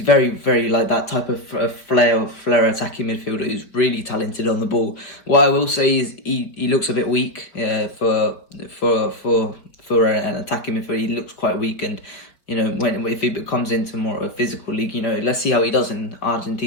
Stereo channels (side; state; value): right; late; 5.2 ms